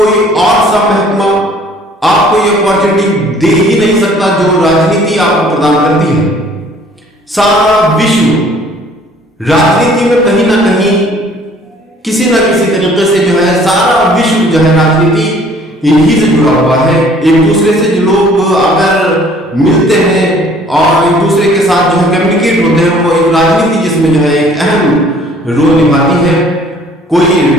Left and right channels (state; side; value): normal; both; correlation 0.56